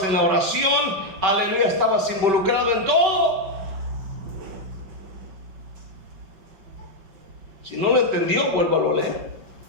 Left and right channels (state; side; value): late; left; 5.2 ms